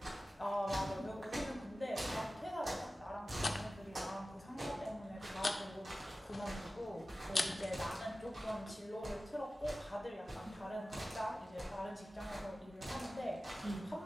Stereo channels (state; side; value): normal; both; correlation 0.96